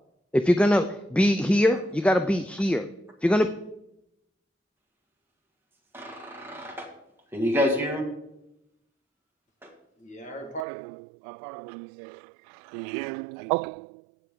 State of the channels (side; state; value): left; drops out; at 10.7 s